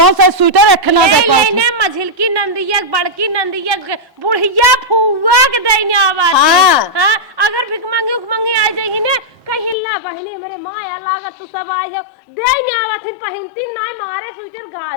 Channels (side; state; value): right; drops out; at 9.8 s